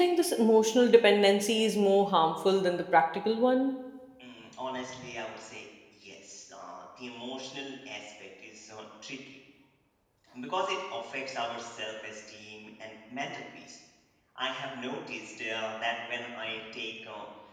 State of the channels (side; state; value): both; identical; correlation 1.00